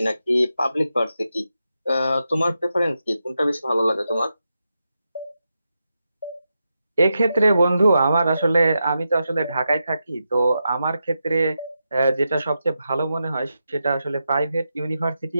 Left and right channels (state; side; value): inverted; both; correlation -0.87